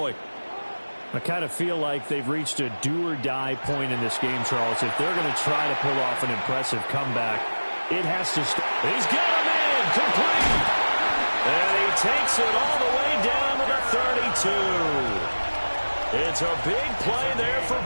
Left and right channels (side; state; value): both; inverted; correlation -1.00